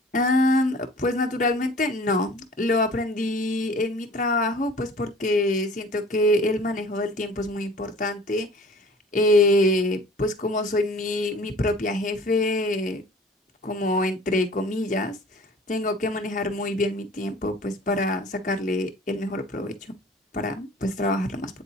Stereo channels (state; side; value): normal; both; correlation 0.47